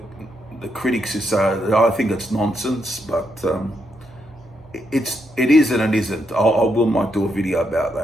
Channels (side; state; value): right; noise; hum, 25 dB below the sound